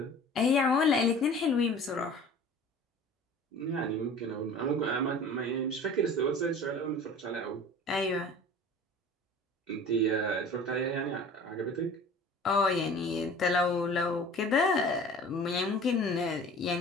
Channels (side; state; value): both; normal; correlation 0.43